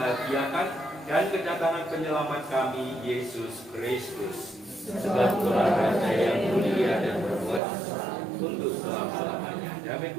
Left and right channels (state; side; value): drops out; left; at 7.6 s